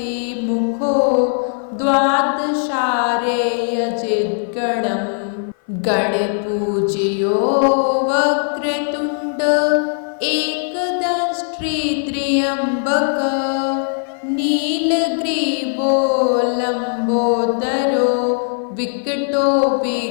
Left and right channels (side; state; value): right; silent; 56 dB below the other